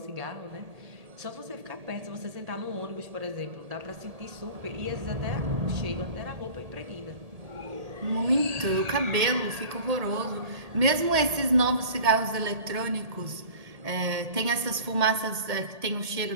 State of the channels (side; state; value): left; late; 1.8 ms